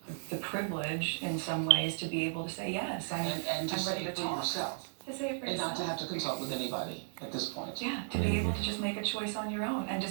the privilege in some ways to be able to say yes. And to I'm say ready it to for talk. yourself. To say it for And yourself. not to have to consult with anybody at this point. Yeah, to be able to just make a choice on your own and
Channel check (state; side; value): silent; left; digital silence